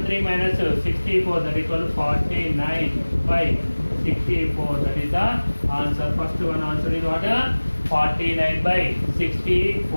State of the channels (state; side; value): inverted; both; correlation -1.00